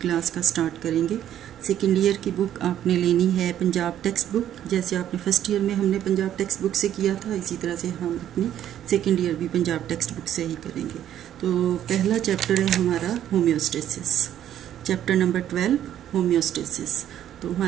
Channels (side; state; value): left; quieter; 11.0 dB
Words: क्लास का स्टार्ट करेंगे। सेकेंड ईयर की बुक आपने लेनी है पंजाब टेक्स्ट बुक। जैसे आपने फर्स्ट ईयर में हमने पंजाब टेक्स्ट बुक से किया था, इसी तरह से हम अपनी सेकेंड ईयर भी पंजाब टेक्स्ट बुक से ही करेंगे। तो पहला चैप्टर है हमारा होम्योस्टेसिस, चैप्टर नंबर 12 होम्योस्टेसिस। तो